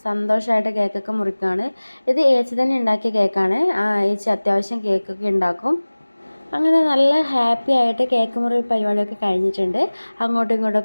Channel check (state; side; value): inverted; both; correlation -1.00